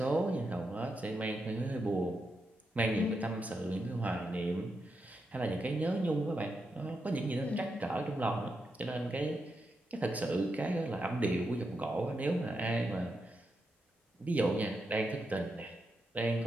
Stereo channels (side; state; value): both; normal; correlation 0.85